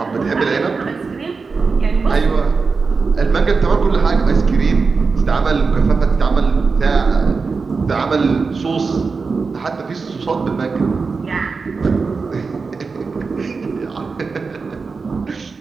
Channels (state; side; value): quieter; left; 4.6 dB